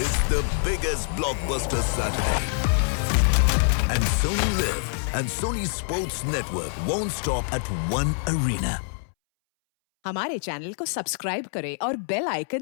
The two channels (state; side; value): silent; right; 62 dB below the other